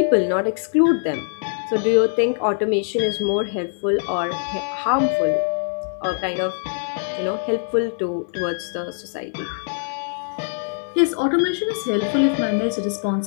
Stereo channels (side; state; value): right; silent; 59 dB below the other